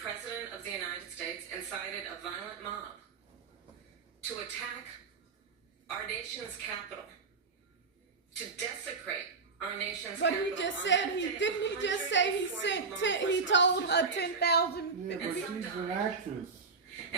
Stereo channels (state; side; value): quieter; left; 4.7 dB